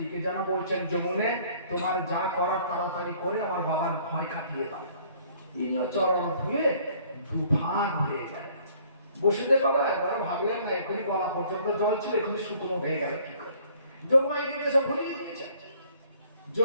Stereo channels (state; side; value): inverted; both; correlation -0.58